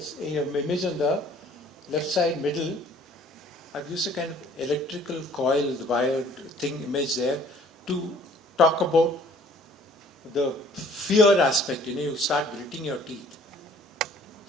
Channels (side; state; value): both; normal; correlation 0.55